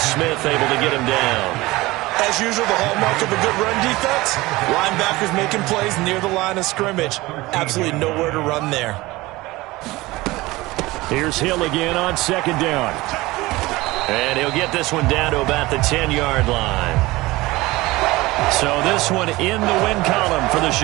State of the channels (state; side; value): quieter; left; 20.1 dB